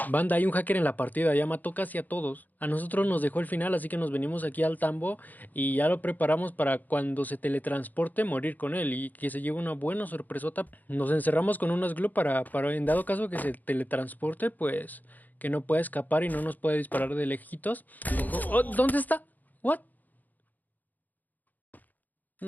Banda, hay un hacker en la partida, ya mató casi a todos. A nosotros nos dejó el final, así que nos venimos aquí al tambo y ya lo preparamos para cuando se teletransporte morir con él y que se lleve una buena sorpresota. Nos encerramos con unas glue para en dado caso que se teletransporte, pues que no pueda escapar y no nos pueda disparar de lejitos. Oh, ¿dónde está? ¿What?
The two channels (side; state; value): right; late; 0.083 ms